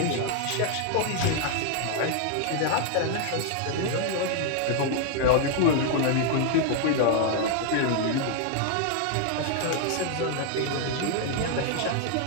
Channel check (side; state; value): both; different; correlation 0.00